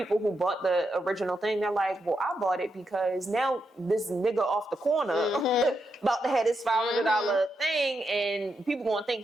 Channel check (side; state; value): both; normal; correlation 0.83